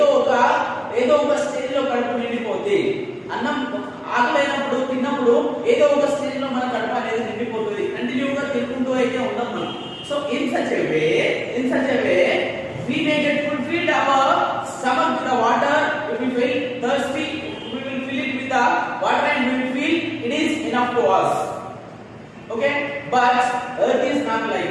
ఒక స్టేజ్ లో కడుపు నిండిపోతుంది. అన్నం ఆకలైనప్పుడు తిన్నప్పుడు ఏదో ఒక స్టేజ్ లో మన కడుపు అనేది నిండిపోతుంది. కంటిన్యూగా తినుకుంటూ అయితే ఉండం మనం. So in such a way we may get fulfilled our stomach with the water. If we feel thirsty, we will fill it with the water and we will feel it is enough to us. Okay, but earth is not like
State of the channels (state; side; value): identical; both; correlation 1.00